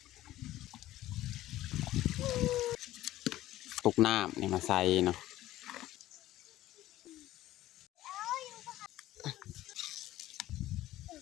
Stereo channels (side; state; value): right; quieter; 15.1 dB